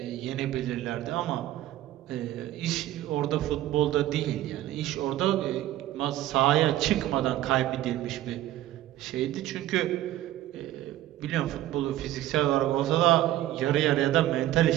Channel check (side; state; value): left; quieter; 14.1 dB